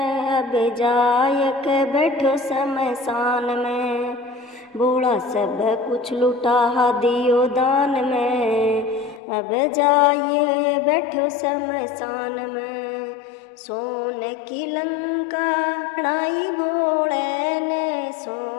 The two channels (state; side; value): drops out; right; at 9.2 s